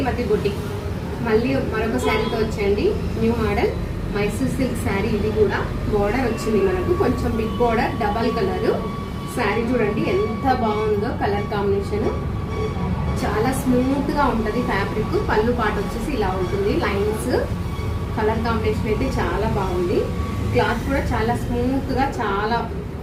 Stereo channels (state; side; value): identical; both; correlation 1.00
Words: boutique. మళ్ళీ మరొక శారీతో వచ్చేయండి. New model Mysore silk sari. ఇది కూడా బోర్డర్ వచ్చింది మనకు, కొంచెం big border, double colour sari. చూడండి ఎంత బాగుందో కలర్ కాంబినేషన్, చాలా స్మూత్ గా ఉంటుంది ఫ్యాబ్రిక్. పళ్ళు పాట వచ్చేసి ఇలా ఉంటుంది, లైన్స్. కలర్ కాంబినేషన్ అయితే చాలా బాగుంది. క్లాత్ కూడా చాలా స్మూత్ గా, చాలా